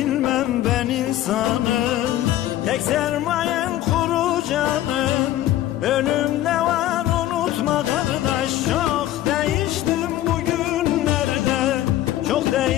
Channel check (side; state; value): right; quieter; 13.7 dB